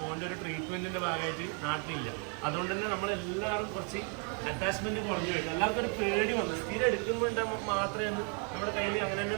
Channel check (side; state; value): left; quieter; 38.9 dB